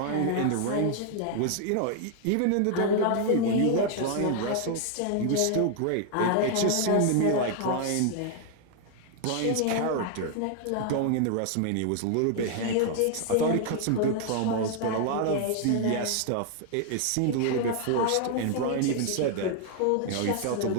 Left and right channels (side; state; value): both; different; correlation 0.00